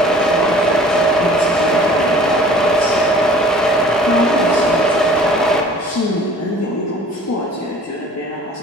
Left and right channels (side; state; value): both; normal; correlation 0.49